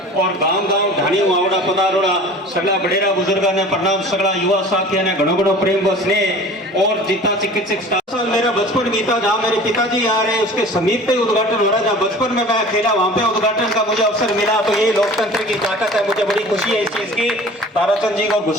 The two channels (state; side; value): normal; both; correlation 0.43